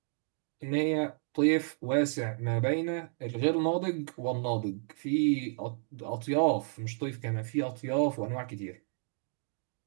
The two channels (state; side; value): silent; left; 57 dB below the other